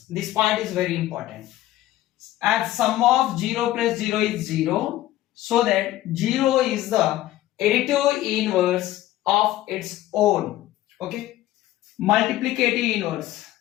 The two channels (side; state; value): right; quieter; 14.7 dB